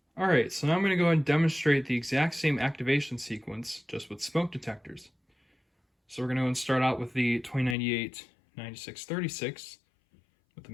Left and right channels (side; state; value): right; drops out; at 7.8 s